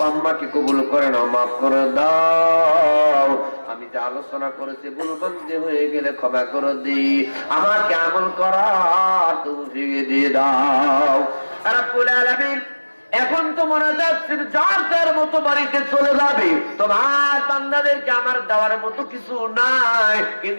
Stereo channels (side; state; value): both; inverted; correlation -1.00